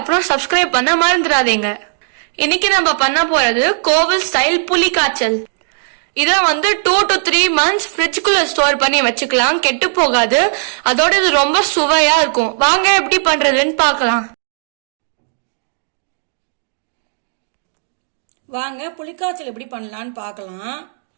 சப்ஸ்கிரைப் பண்ண மறந்துடாதீங்க. இன்னைக்கு நம்ம பண்ண போறது கோவில் ஸ்டைல் புளி காய்ச்சல். இதை 2 to 3 months ஃப்ரிட்ஜுக்குள்ள ஸ்டோர் பண்ணி வச்சுக்கலாம், கெட்டு போகாது. அதோட இது ரொம்ப சுவையா இருக்கும். வாங்க எப்படி பண்றதுன்னு பார்க்கலாம். வாங்க புளிக்காய்ச்சல் எப்படி பண்ணலான்னு பார்க்கலாம்.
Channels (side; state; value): left; silent; digital silence